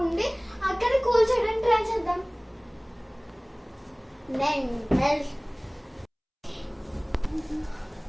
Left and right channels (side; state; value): both; identical; correlation 1.00